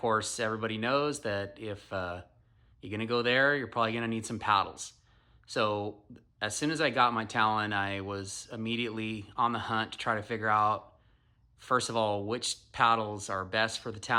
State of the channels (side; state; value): both; identical; correlation 1.00